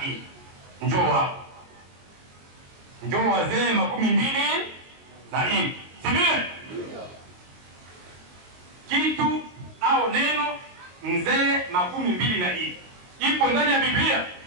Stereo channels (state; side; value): late; left; 22 ms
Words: nne. Njoo hapo. Njoo wazee makumi mbili na nne. Sivile? Kitu au neno mzee makumi mbili na nne ipo ndani ya Biblia?